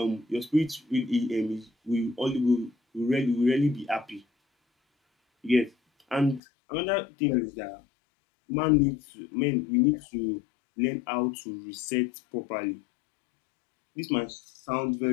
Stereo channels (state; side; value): drops out; right; at 6.4 s